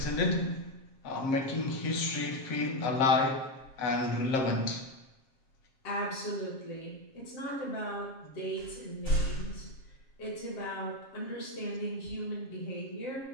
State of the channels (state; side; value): late; right; 7.5 ms